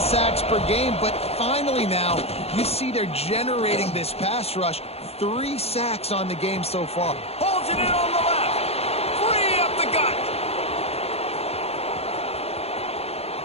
per game, but finally now you see they're generating this pass rush. 3 sacks on the game so far. Holds it in on the left. 3 up the gut.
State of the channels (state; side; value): late; right; 0.29 ms